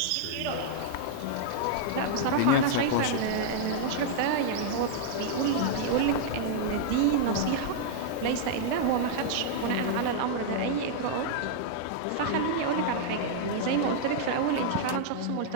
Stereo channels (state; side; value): different; both; correlation -0.01